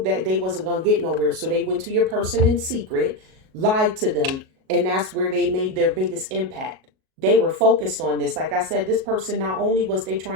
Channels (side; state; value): left; late; 37 ms